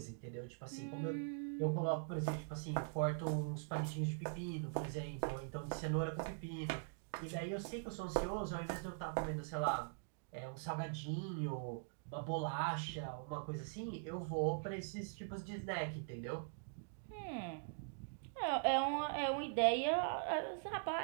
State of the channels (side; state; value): left; silent; digital silence